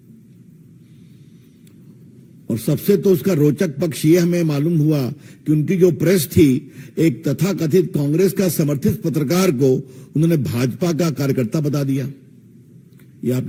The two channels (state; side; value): identical; both; correlation 1.00